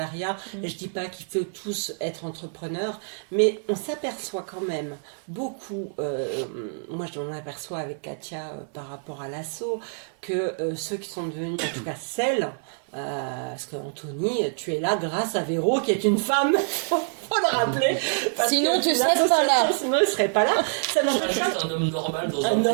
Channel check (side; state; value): left; silent; 61 dB below the other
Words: Je dis pas qu'il faut tous être entrepreneurs, mais on s'aperçoit quand même beaucoup, moi je m'en aperçois avec Katia par rapport à l'assaut, que ceux qui sont devenus, en tout cas celles, parce que Anthony, tu es là grâce à Véro qui est une femme, faut le rappeler. Parce Sinon, que tu serais pas là. Sinon, il serait pas là. Ça Je n'empêche serais pas. juste un homme normal dans Un